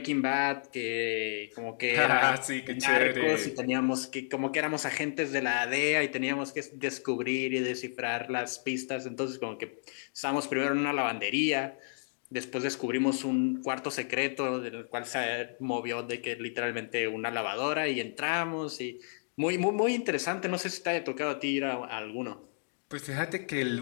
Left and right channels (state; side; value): silent; right; digital silence